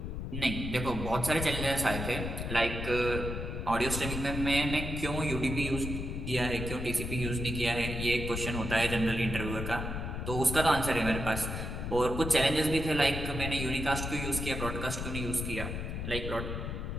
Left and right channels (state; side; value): noise; left; rumble, 4 dB below the sound